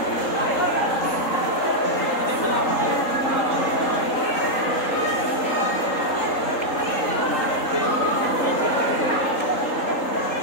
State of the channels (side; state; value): right; late; 3.8 ms